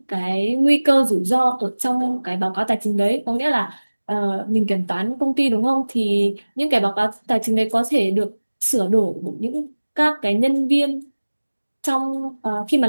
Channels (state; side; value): inverted; both; correlation -1.00